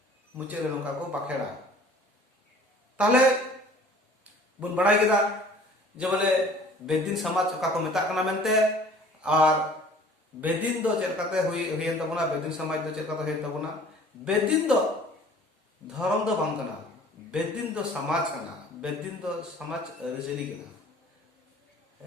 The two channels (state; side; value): normal; both; correlation 0.50